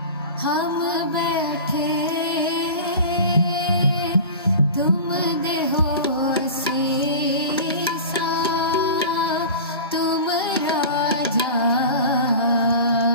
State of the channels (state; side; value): inverted; both; correlation -0.34